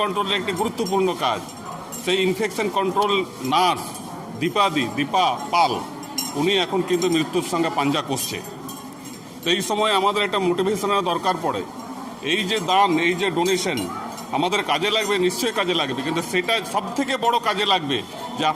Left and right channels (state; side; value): identical; both; correlation 1.00